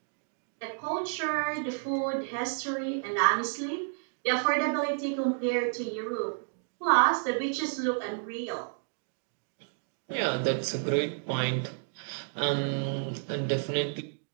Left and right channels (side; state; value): left; silent; digital silence